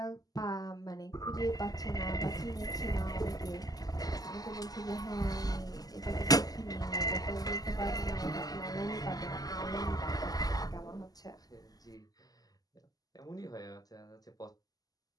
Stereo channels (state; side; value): late; right; 0.18 ms